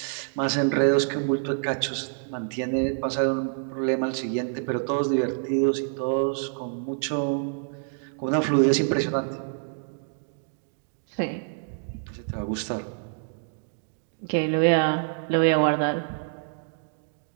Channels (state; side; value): silent; left; digital silence